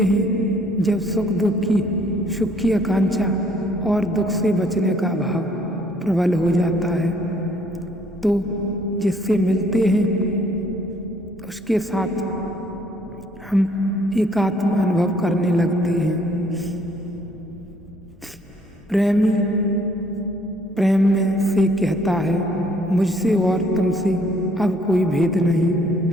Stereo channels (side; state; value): both; normal; correlation 0.63